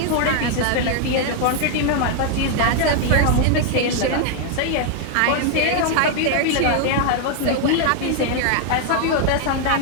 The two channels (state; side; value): different; both; correlation 0.00